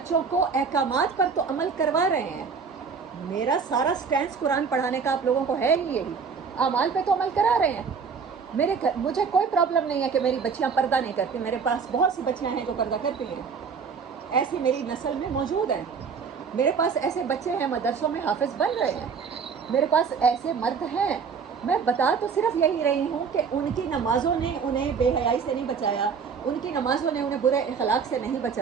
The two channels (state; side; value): quieter; left; 5.8 dB